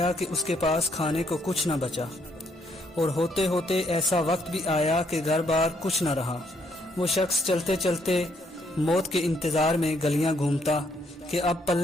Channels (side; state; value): both; normal; correlation 0.72